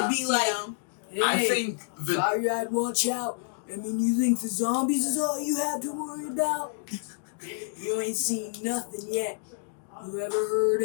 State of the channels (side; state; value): right; silent; digital silence